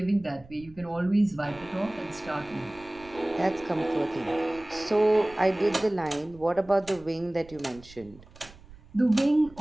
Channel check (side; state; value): right; noise; rumble, 22 dB below the sound